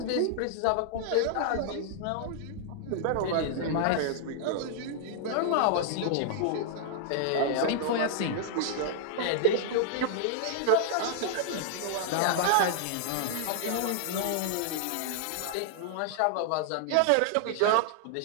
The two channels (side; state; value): both; different; correlation -0.01